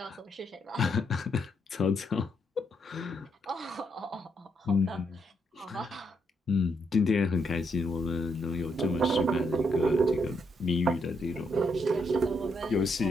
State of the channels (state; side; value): normal; both; correlation 0.77